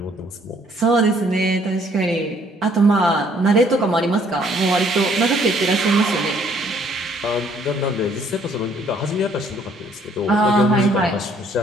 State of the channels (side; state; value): both; normal; correlation 0.63